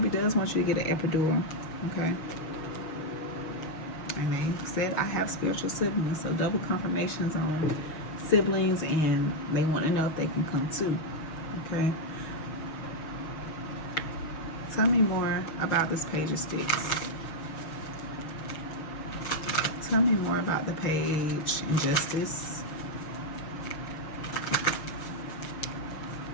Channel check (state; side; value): late; right; 6.2 ms